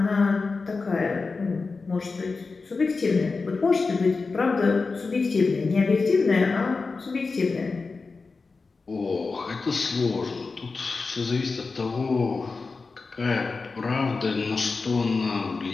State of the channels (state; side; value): quieter; right; 4.2 dB